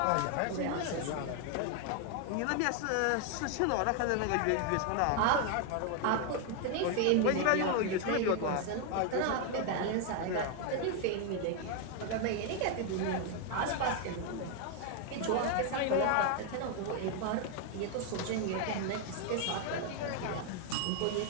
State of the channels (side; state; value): both; different; correlation 0.01